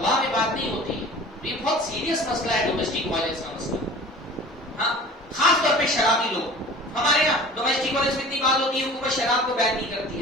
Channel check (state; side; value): normal; both; correlation 0.42